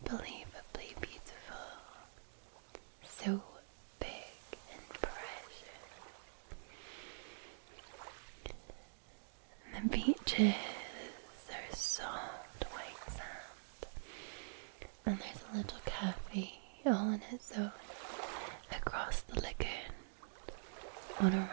beautiful, so big and precious. The beaches are soft white sand, and there's a little cafe all in its own across the lagoon on a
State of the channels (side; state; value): left; silent; digital silence